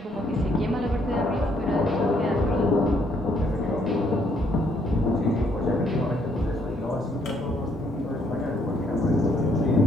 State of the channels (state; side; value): normal; both; correlation 0.69